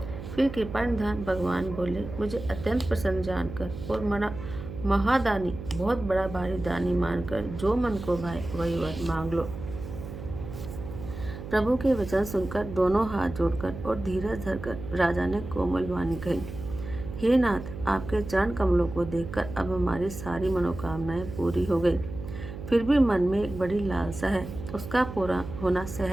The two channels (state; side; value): noise; right; hum, 10 dB below the sound